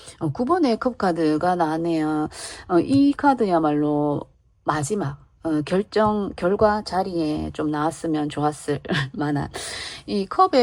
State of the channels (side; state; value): both; identical; correlation 1.00